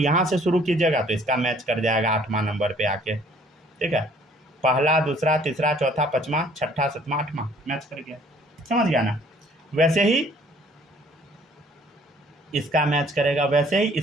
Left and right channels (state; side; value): normal; both; correlation 0.58